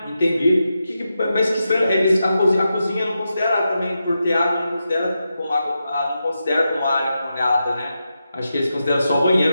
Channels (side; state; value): both; inverted; correlation -0.88